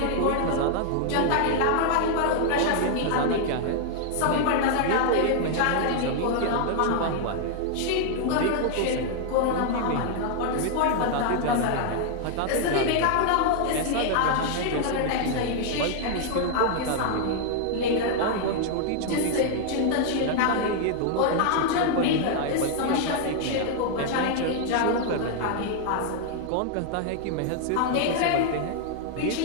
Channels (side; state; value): both; different; correlation 0.00